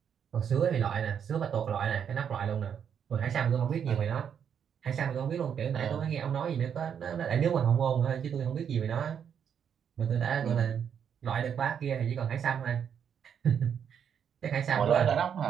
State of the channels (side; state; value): left; quieter; 8.0 dB